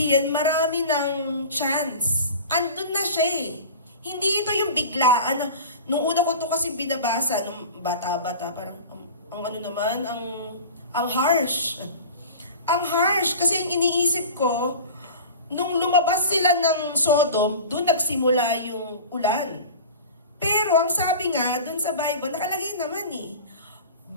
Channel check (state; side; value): inverted; both; correlation -0.36